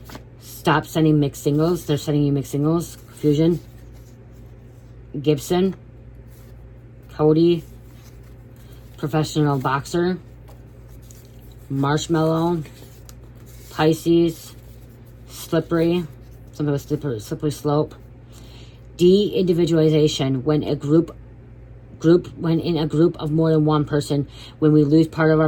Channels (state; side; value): identical; both; correlation 1.00